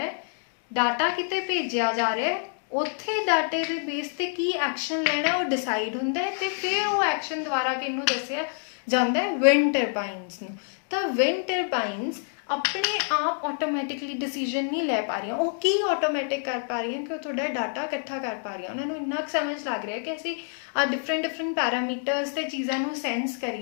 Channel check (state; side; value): silent; right; 60 dB below the other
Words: ਹੈ, ਡਾਟਾ ਕਿਤੇ ਭੇਜਿਆ ਜਾ ਰਿਹਾ, ਉੱਥੇ ਡਾਟੇ ਦੇ ਬੇਸ 'ਤੇ ਕੀ ਐਕਸ਼ਨ ਲੈਣਾ ਉਹ ਡਿਸਾਈਡ ਹੁੰਦਾ ਹੈ ਤੇ ਫਿਰ ਉਹ ਐਕਸ਼ਨ ਦੁਆਰਾ ਕਿਹਨੂੰ ਦੱਸਿਆ ਜਾਂਦਾ ਹੈ, ਵਿੰਡ ਟਰਬਾਈਨਸ ਨੂੰ। ਤਾਂ ਵਿੰਡ ਟਰਬਾਈਨਸ ਆਪਣੇ ਆਪ ਆਟੋਮੈਟਿਕਲੀ ਡਿਸੀਜਨ ਨਹੀਂ ਲੈ ਪਾ ਰਹੀਆਂ। ਉਹ ਕੀ ਆਟੋਮੈਟਿਕ ਕਰ ਪਾ ਰਹੀਆਂ ਕਿ ਉਹ ਤੁਹਾਡਾ ਡਾਟਾ ਇਕੱਠਾ ਕਰ ਪਾ ਰਹੀਆਂ। ਉਹਨਾਂ ਨੂੰ ਇੰਨਾ ਕੁ ਸਮਝ ਲੱਗ ਰਿਹਾ ਕਿ ਅਸੀਂ ਡਿਫਰੈਂਟ ਪੈਰਾਮੀਟਰਸ ਤੇ ਚੀਜ਼ਾਂ ਨੂੰ ਸੈਂਸ